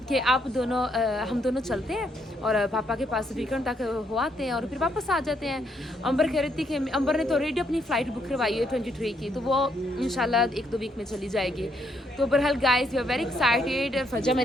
कि आप दोनों हम दोनों चलते हैं और पापा के पास वीकेंड तक हो आते हैं और फिर वापस आ जाते हैं। अंबर कह रही थी कि अंबर ने तो ऑलरेडी अपनी फ़्लाइट बुक करवाई है 23 की, तो वो इंशाल्लाह 1-2 वीक में चली जाएगी। तो बहरहाल guys we are very excited. फजा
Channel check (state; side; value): normal; both; correlation 0.73